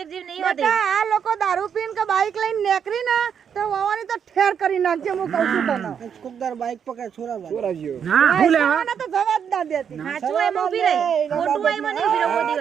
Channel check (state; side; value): quieter; left; 7.7 dB